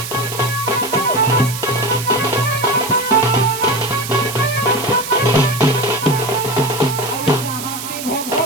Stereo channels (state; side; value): noise; right; hiss, 8 dB below the sound